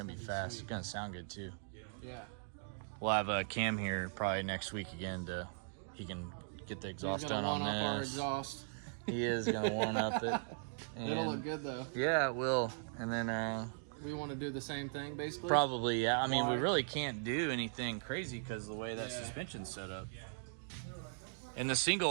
to be fast. It's going to sound good too. Yeah. We'll have a Cam here probably next week again he can get the exhaust done on this. He's going to one-up our exhaust. He is going to one-up it. It'll look good though. Yeah, it will. And then we want to do the same thing basically? Probably, yeah. I mean, we really can't do anything crazy because of the way that suspension's set up. And the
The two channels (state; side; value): silent; left; digital silence